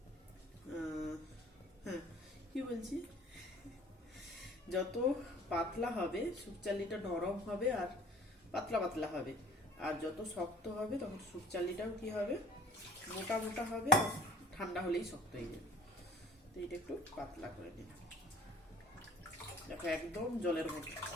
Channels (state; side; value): normal; both; correlation 0.50